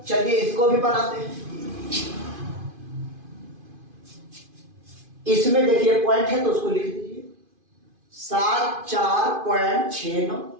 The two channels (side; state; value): left; late; 2.5 ms